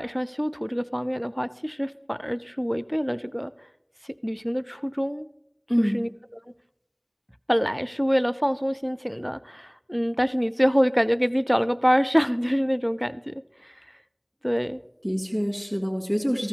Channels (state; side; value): identical; both; correlation 1.00